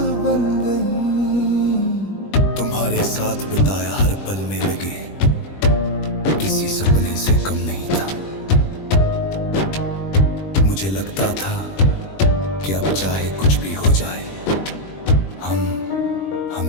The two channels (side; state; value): right; late; 21 ms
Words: बन गई। तुम्हारे साथ बिताया हर पल में लगे किसी सपने से कम नहीं था। मुझे लगता था कि अब चाहे कुछ भी हो जाए हम